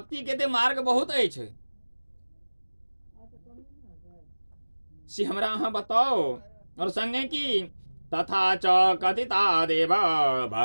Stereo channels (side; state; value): both; inverted; correlation -1.00